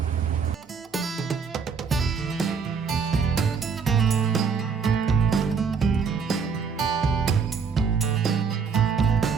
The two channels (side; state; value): left; quieter; 5.8 dB